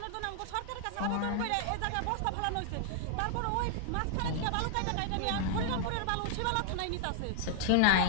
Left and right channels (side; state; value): both; different; correlation 0.00